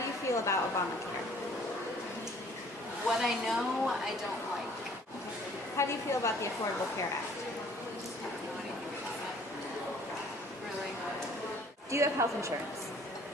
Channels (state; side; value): normal; both; correlation 0.56